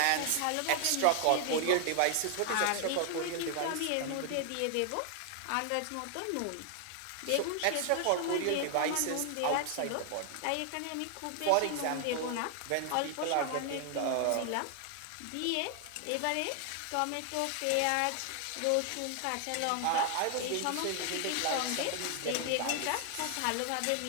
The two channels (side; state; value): both; different; correlation 0.00